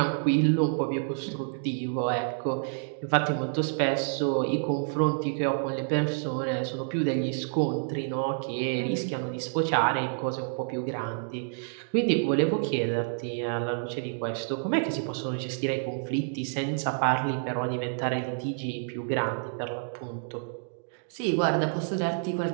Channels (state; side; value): silent; left; digital silence